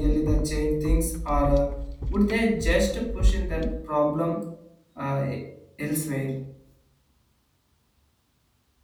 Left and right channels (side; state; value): both; identical; correlation 1.00